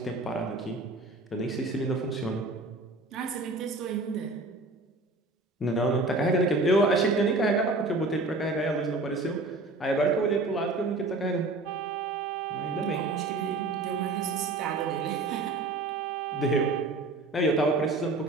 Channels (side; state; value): left; quieter; 3.1 dB